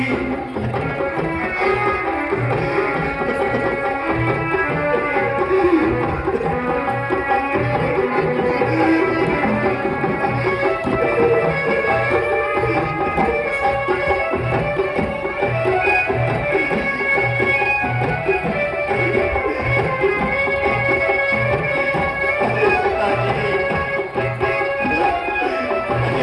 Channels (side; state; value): both; identical; correlation 1.00